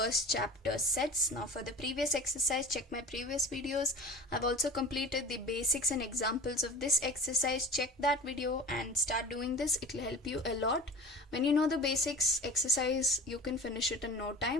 chapter sets. Now for the previous exercise, check my previous videos. I've also completed the basics and examples of this exercise. Check that video and start doing this. It will help you a lot. When you know the basics exercise, you can finish it in no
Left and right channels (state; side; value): normal; both; correlation 0.38